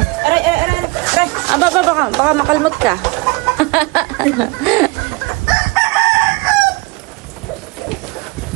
Aray. Baka makalmot ka.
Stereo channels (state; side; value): quieter; left; 24.6 dB